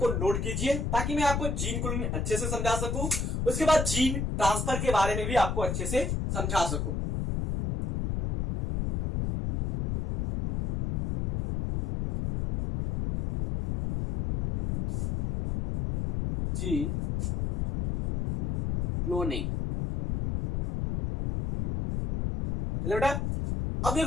नोट कीजिए ताकि मैं आपको जीन क्लोनिंग अच्छे से समझा सकूं, उसके बाद जीन ट्रांसफर के बारे में भी आपको अच्छे से समझा सकूं। जीन क्लोनिंग, चलो बेटा, अब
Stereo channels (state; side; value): noise; left; rumble, 1 dB below the sound